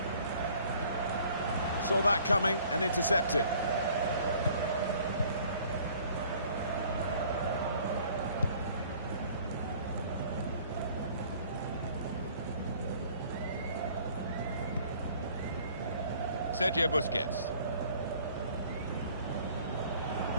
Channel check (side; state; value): both; inverted; correlation -0.55